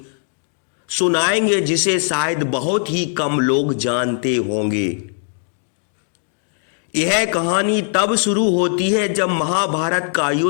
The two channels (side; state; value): right; silent; 58 dB below the other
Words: सुनाएंगे जिसे शायद बहुत ही कम लोग जानते होंगे। यह कहानी तब शुरू होती है जब महाभारत का